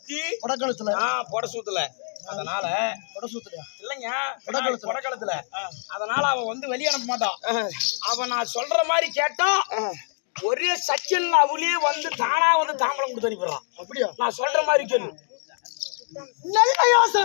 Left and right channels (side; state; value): right; silent; 61 dB below the other